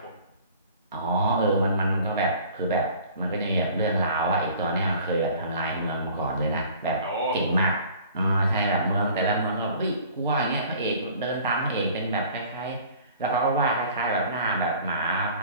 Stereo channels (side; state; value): both; inverted; correlation -0.49